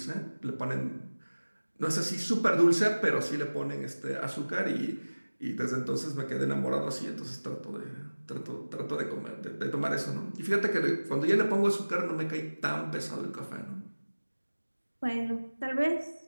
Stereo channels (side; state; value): both; inverted; correlation -1.00